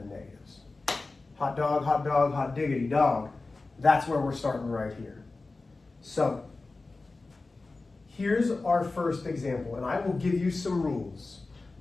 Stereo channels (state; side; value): quieter; right; 3.5 dB